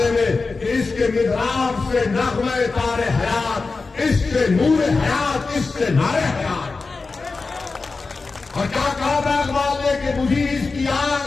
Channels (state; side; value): quieter; right; 4.1 dB